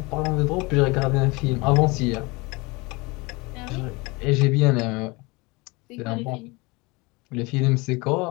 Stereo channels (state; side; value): quieter; right; 25.3 dB